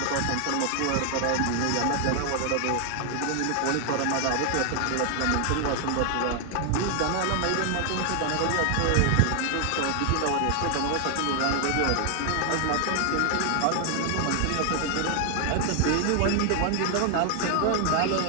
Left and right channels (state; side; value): different; both; correlation 0.00